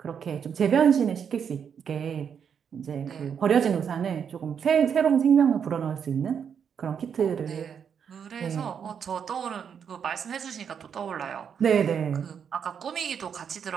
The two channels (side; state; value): left; quieter; 7.4 dB